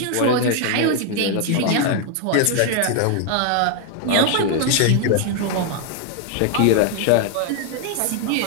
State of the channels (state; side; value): different; both; correlation 0.01